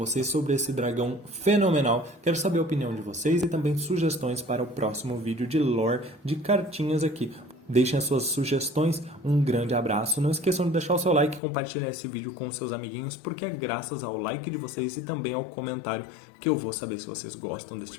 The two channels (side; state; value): right; drops out; at 11.4 s